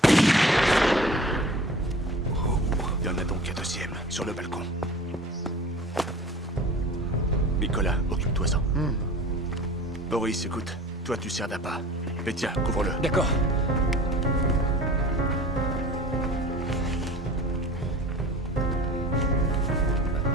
Il y en a donc un deuxième, sur le balcon. Nicolas, occupe-toi-en. Boris, écoute, toi tu sers d'appât. Mais tiens, couvre-le. D'accord.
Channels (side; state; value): both; normal; correlation 0.42